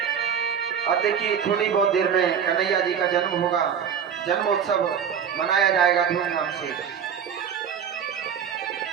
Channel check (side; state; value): left; quieter; 7.9 dB